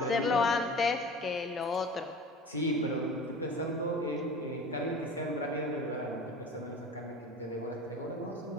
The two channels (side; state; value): both; normal; correlation 0.38